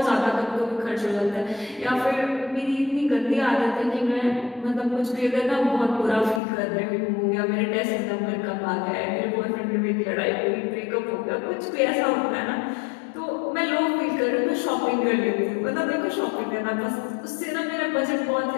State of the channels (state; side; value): drops out; right; at 6.4 s